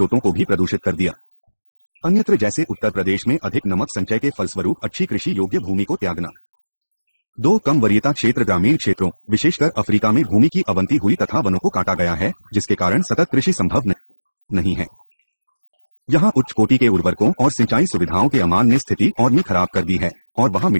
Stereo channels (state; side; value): inverted; both; correlation -1.00